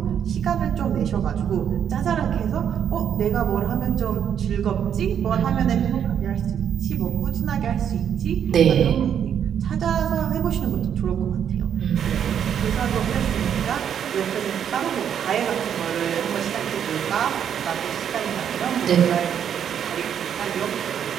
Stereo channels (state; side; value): quieter; left; 8.7 dB